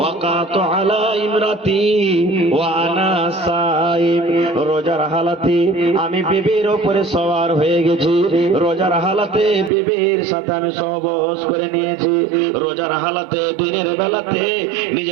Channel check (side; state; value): left; drops out; at 9.7 s